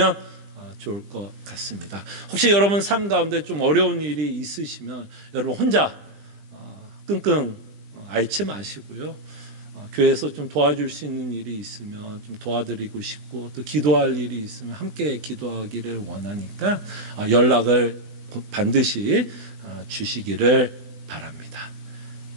좋을 것 같습니다. 혹시 여러분 삶 가운데 좀 어려운 일이 있으시면 여러분 혼자 끙끙 앓지 마시고요. 교회에서 좀 도와줄 수 있는 일이 있으면 좀 도와드리고 싶고 또 기도할 일이 있으면 함께 기도하기를 원하니까 연락을 반드시 주시기를 바랍니다.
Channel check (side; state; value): left; late; 20 ms